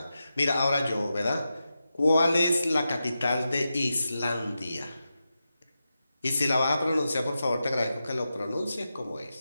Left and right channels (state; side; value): inverted; both; correlation -0.90